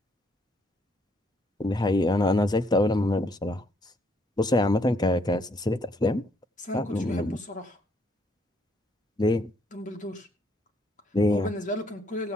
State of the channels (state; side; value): normal; both; correlation 0.70